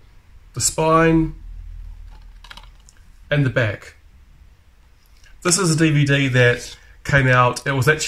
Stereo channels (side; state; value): both; identical; correlation 1.00